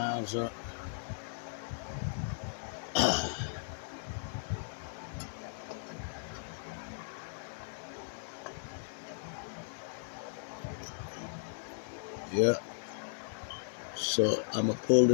up. Yeah. So I'm gonna pull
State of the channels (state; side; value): silent; right; digital silence